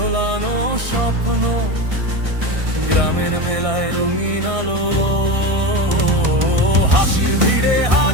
স্বপ্ন, গ্রামের মেলায় রঙিন আলো, হাসির ভিড়ে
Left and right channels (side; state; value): left; late; 1.6 ms